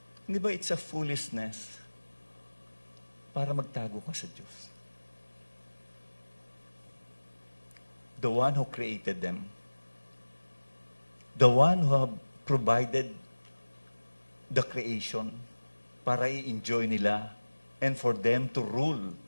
hindi ba it's a foolishness para magtago ka sa Diyos? The one who created them, the one who have provided the creation para i-enjoy nila and for them to rule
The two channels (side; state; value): both; inverted; correlation -1.00